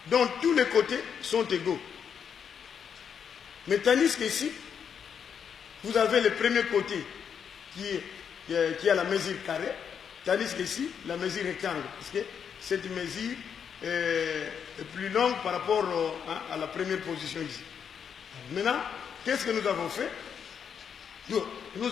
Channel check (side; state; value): right; quieter; 7.5 dB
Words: dont tous les côtés sont égaux. Mais tandis qu'ici, vous avez le premier côté qui a la mesure carrée, tandis qu'ici, la mesure rectangle, parce que cette mesure est plus longue par rapport à la première position ici. Maintenant, qu'est-ce que nous avons fait?